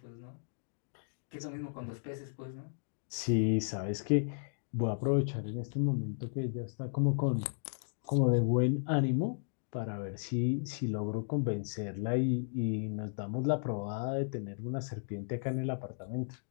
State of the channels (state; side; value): silent; right; digital silence